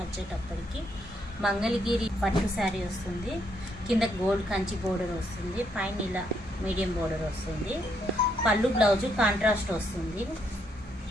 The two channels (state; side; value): normal; both; correlation 0.74